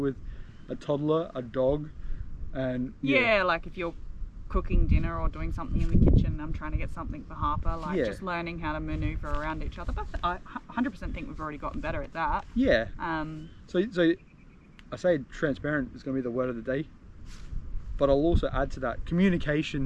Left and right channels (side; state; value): both; identical; correlation 1.00